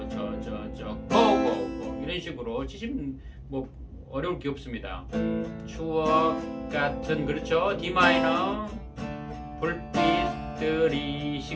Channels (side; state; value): both; identical; correlation 1.00